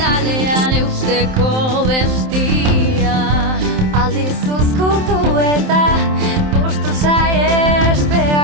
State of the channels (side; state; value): left; late; 27 ms